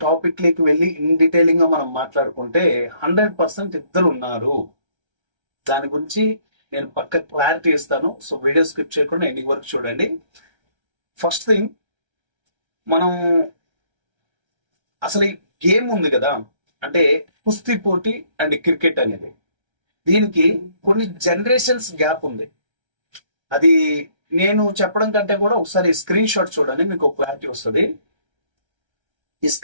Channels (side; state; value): left; late; 1.3 ms